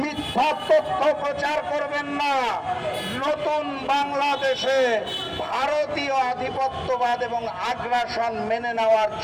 মিথ্যা তথ্য প্রচার করবেন না। নতুন বাংলাদেশে ভারতীয় আধিপত্যবাদ এবং আগ্রাসন মেনে নেওয়ার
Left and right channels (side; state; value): both; identical; correlation 1.00